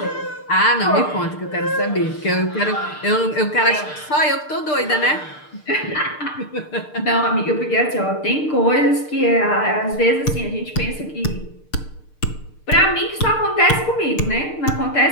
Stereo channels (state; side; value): late; right; 6.6 ms